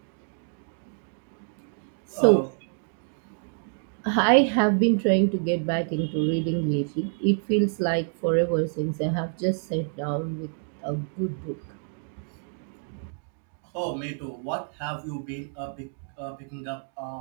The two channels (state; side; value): silent; left; 60 dB below the other